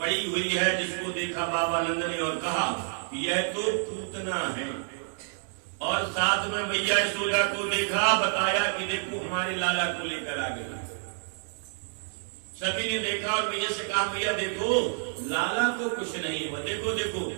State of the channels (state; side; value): silent; left; digital silence